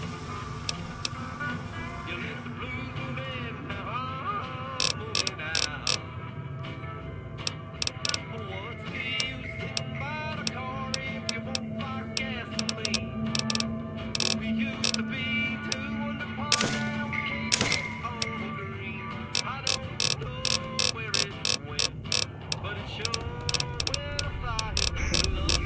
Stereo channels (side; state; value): both; identical; correlation 1.00